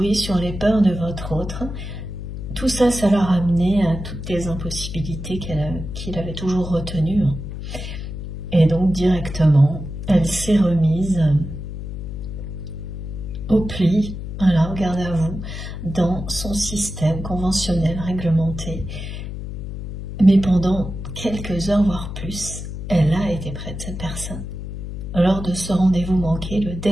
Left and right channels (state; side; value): noise; left; hum, 7 dB below the sound